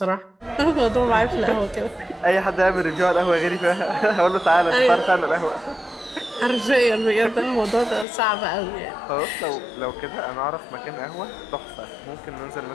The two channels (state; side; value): drops out; right; at 8.1 s